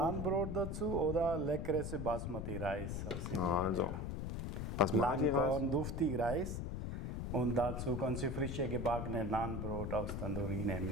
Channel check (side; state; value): left; noise; rumble, 3 dB below the sound